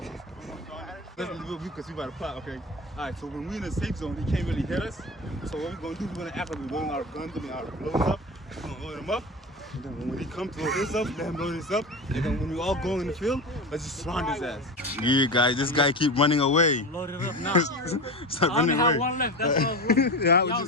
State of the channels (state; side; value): normal; both; correlation 0.25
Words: Let's do because we about to plot, okay? Alright, so when we're in the safe zone, he can't really hit us. So what we're gonna do, we're gonna act like we're loading our guns, our loads up. We're gonna load them up. And then when he comes to load this up, let him load this up. And then when we all go in the field, let's just surround his ass. Yeah, guys, this guy keep running away. Load it up now. Stop I only running have away. one left. That's what I was running. Yeah, Y'all